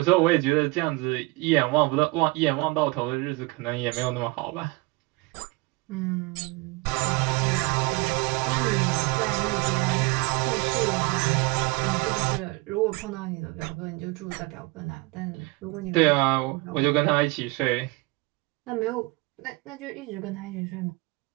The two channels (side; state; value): left; quieter; 24.8 dB